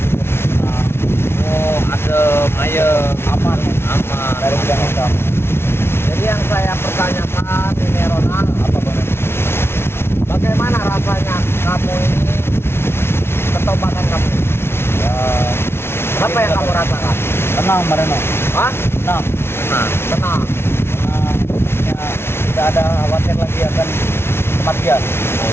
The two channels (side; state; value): right; late; 0.12 ms